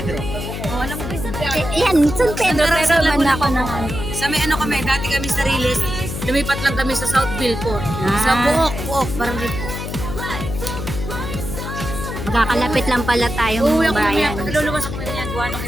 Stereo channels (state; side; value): noise; left; hum, 6 dB below the sound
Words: Oh, alam mo ba? Yan, San Pedro, pero man ako ng ano. Sa may ano kami, dati kami sa Riles, lumipat lang kami sa Southville po. Sa Buok, parang dito. Magkakalapit lang pala tayong Uuwi ako bayan. mamaya, luluwas ako mamaya, gawa nung